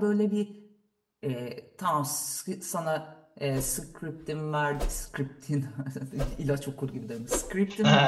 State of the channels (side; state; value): both; identical; correlation 1.00